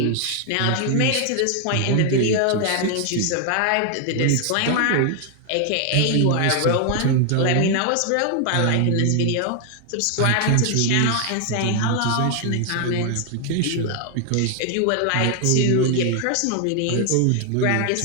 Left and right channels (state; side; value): different; both; correlation 0.00